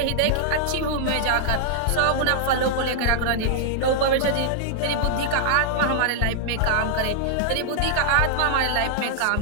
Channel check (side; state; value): both; different; correlation -0.01